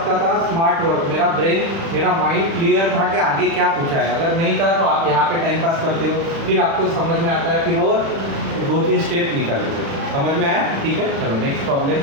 था स्मार्ट वर्क, मेरा ब्रेन मेरा माइंड क्लियर था कि आगे क्या पूछा है। अगर नहीं था तो आप यहाँ पे टाइम पास करते हो, फिर आपको समझ में आता है, फिर और 2-3 स्टेप निकालते हो। समझ में आया? ठीक है, चलो नेक्स्ट प्रॉब्लम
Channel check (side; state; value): left; late; 36 ms